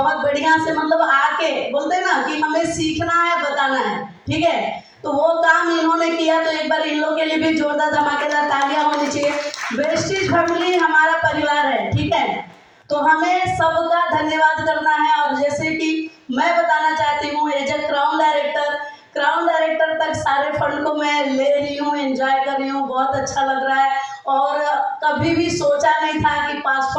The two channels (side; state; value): both; identical; correlation 1.00